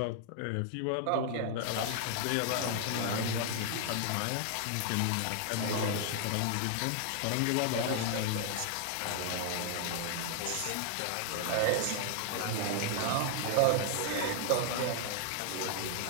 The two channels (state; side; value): different; both; correlation 0.00